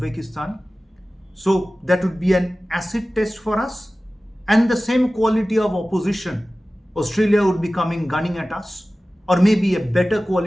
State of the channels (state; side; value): normal; both; correlation 0.97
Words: So that would be an acid test for us. And the same quality of opposition, Australia would be coming gunning at us. Or maybe a better